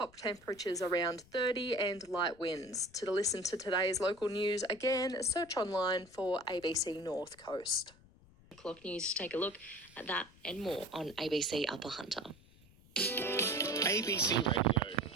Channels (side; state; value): left; noise; rumble, 26 dB below the sound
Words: temperatures around 30 and light winds. To listen to today's local news, again, search online for ABC North Coast. Clock News to take a look at that and more on ABC Upper Hunter. ABC